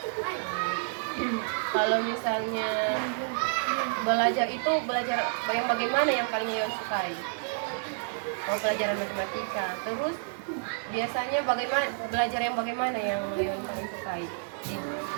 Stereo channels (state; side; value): silent; left; 58 dB below the other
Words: Kalau misalnya belajar itu belajar yang bagaimana yang paling Leon sukai? Oh, pelajaran matematika. Terus biasanya bagaimana belajar yang bagaimana yang Leon paling sukai?